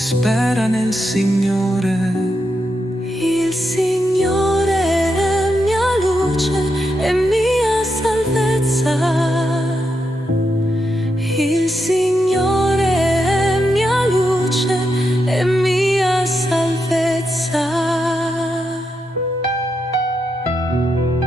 nel Signore. Il Signore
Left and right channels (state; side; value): normal; both; correlation 0.84